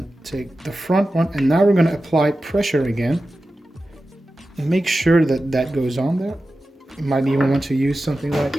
take the front one, and now we're going to apply pressure again. And make sure that that goes on there. You might even want to use something like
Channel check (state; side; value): normal; both; correlation 0.93